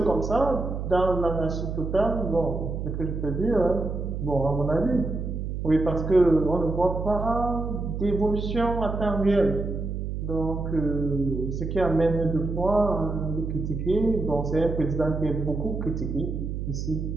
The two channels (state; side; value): noise; right; hum, 4 dB below the sound